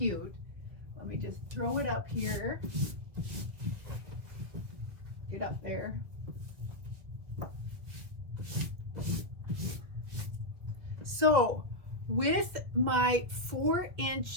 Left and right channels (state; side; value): late; left; 1.8 ms